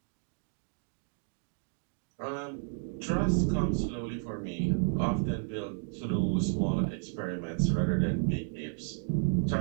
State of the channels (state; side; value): silent; left; 56 dB below the other